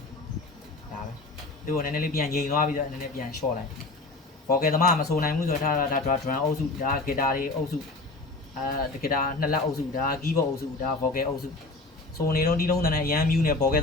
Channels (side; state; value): right; quieter; 3.3 dB